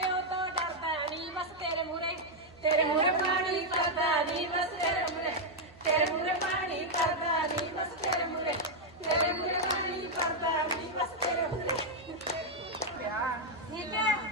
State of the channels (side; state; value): right; noise; hum, 25 dB below the sound